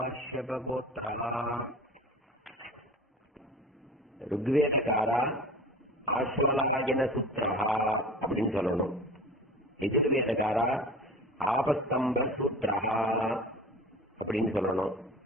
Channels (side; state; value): both; normal; correlation 0.36